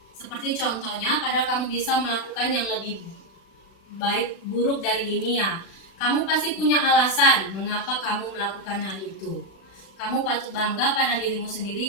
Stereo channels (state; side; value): late; right; 36 ms